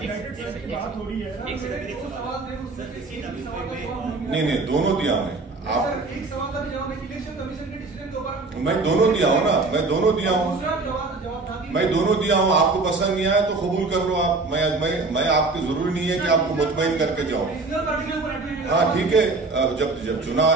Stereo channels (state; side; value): quieter; left; 3.7 dB